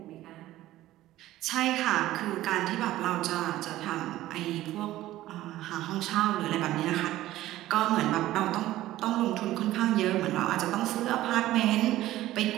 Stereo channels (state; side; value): quieter; left; 15.1 dB